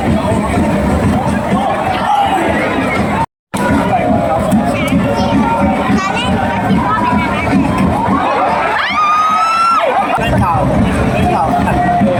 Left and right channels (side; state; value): both; identical; correlation 1.00